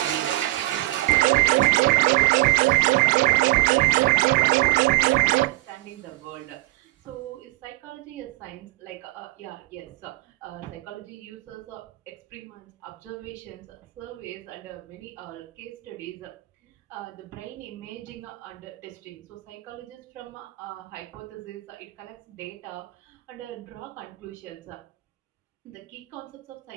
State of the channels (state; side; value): quieter; left; 20.0 dB